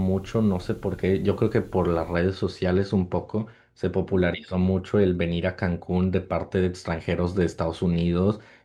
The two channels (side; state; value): both; identical; correlation 1.00